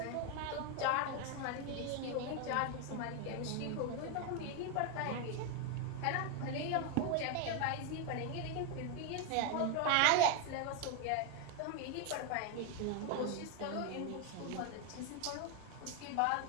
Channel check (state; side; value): different; both; correlation 0.01